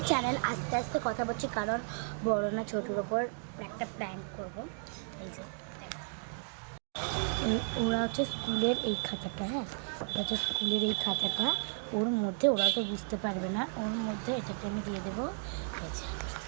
channel. আস্তে আস্তে কথা বলছি কারণ বড় না ছোটোর ওপর একটা প্র্যাঙ্ক করব। এই যে ওরা হচ্ছে স্কুলের এই খাতাটা, হ্যাঁ ওটা হচ্ছে স্কুলের এই খাতাটা, ওর মধ্যে ওরা তো বুঝতে পারবে না, ওর মধ্যে এটাকে আমি দিয়ে দেবো। এই যে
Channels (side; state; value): left; silent; 55 dB below the other